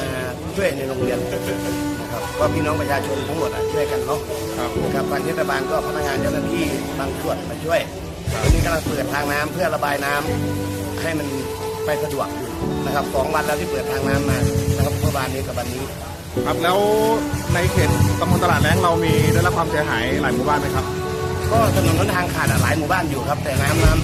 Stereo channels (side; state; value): both; identical; correlation 1.00